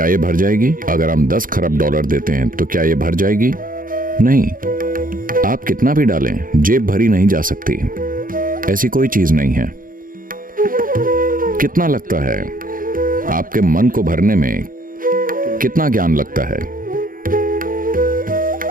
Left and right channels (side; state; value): left; late; 0.40 ms